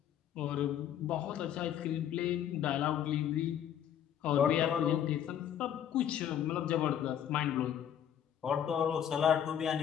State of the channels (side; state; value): right; quieter; 9.8 dB